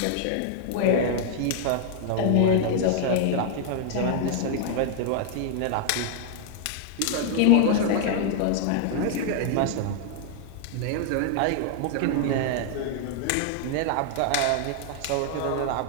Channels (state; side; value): different; both; correlation 0.00